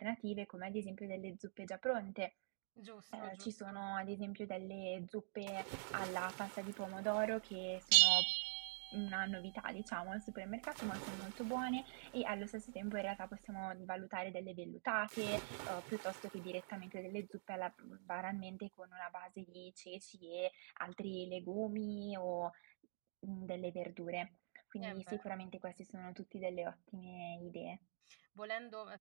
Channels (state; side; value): silent; left; digital silence